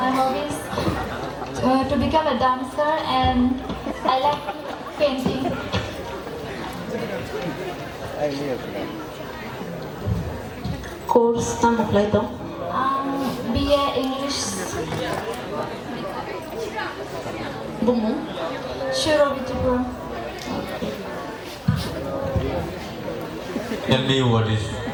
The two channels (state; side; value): identical; both; correlation 1.00